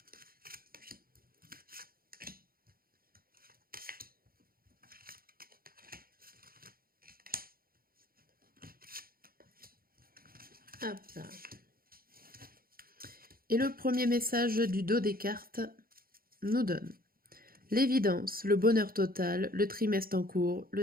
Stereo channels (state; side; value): late; left; 0.43 ms